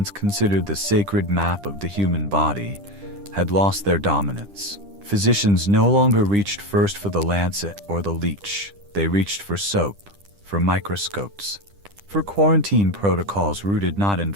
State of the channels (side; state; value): left; late; 10 ms